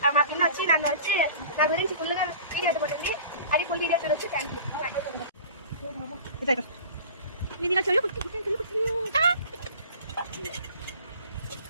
మా పిన్న వచ్చి నన్ను వచ్చి నా గురించి ఫుల్గా వీడియో పడుతుంది. అది ఫుల్ వీడియో చూడొచ్చు. Thank you.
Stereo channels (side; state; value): both; inverted; correlation -0.42